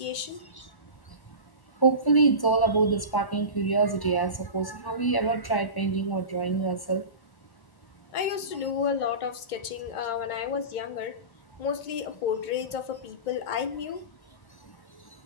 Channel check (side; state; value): right; late; 1.1 ms